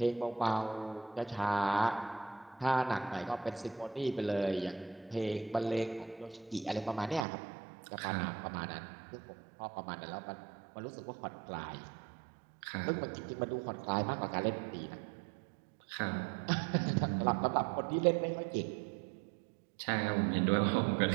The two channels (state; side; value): drops out; left; at 7.2 s